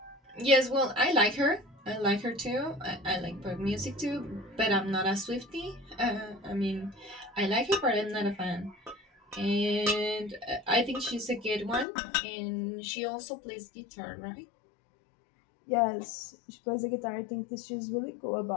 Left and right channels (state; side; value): drops out; right; at 11.9 s